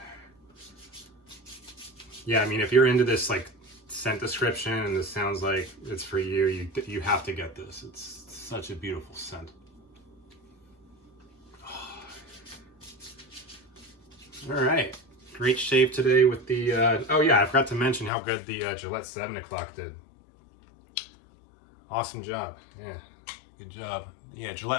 Yeah, I mean, if you're into this like scent description and this sounds like it's for you, you have to get this. It's such a beautiful scent. All right, great shave today with the, oh yeah, I forgot to mention how good the Gillette 7 o'clock did. Awesome job, yeah, good job. Yeah,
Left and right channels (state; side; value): drops out; right; at 18.1 s